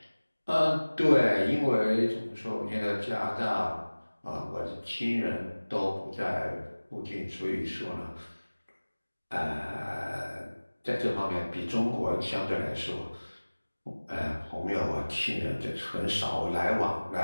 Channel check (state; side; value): inverted; both; correlation -1.00